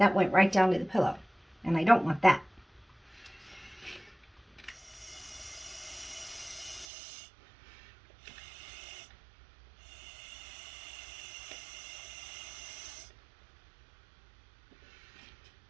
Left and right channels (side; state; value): left; drops out; at 6.9 s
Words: went right down to the pillow. And I don't want that.